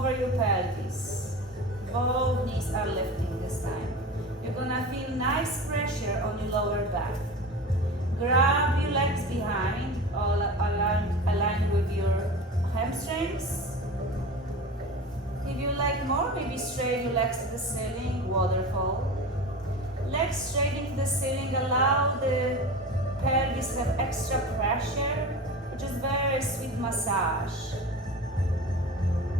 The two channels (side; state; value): both; normal; correlation 0.32